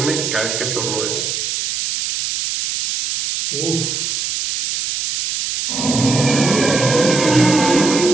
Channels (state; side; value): noise; right; hiss, 2 dB below the sound